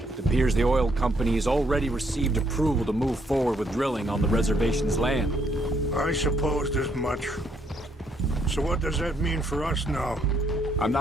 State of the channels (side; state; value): both; normal; correlation 0.72